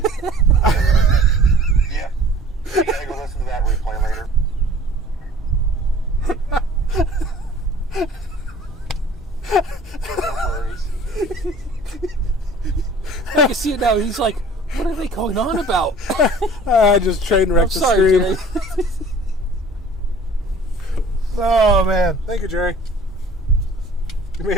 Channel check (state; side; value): normal; both; correlation 0.49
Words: You gotta go listen to that replay later. No worries. I can see it now. He's like, what are they going on about? I just train I'm wrecked the sorry, stream. Jerry. Oh, man. Thank you, Jerry. You